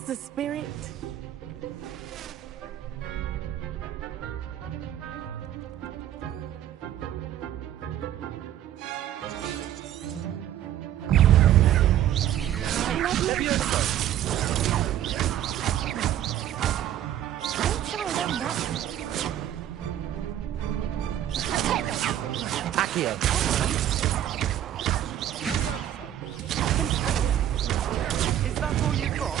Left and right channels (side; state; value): left; quieter; 11.4 dB